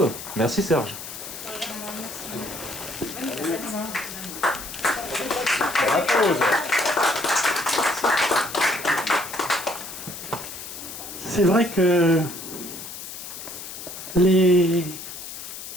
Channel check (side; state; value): left; noise; hiss, 10 dB below the sound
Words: Merci Serge. La pause. C'est vrai que les